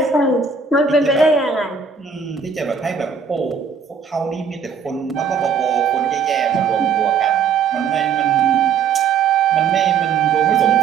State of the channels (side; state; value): left; quieter; 6.1 dB